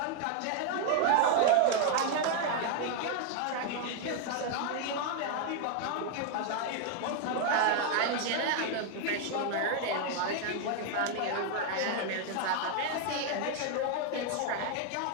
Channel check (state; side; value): different; both; correlation 0.00